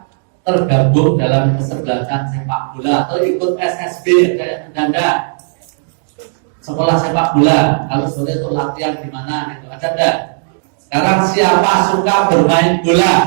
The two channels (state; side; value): silent; left; digital silence